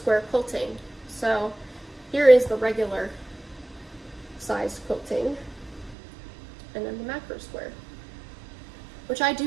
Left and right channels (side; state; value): left; drops out; at 6.0 s